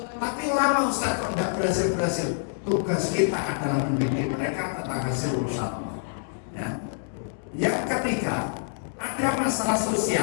Tapi lama Ustaz kok tidak berhasil. Tugas kita adalah mendidik mereka tentang hasil urusan Allah. Ya. Yang ketiga, ada masalah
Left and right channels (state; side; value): silent; right; digital silence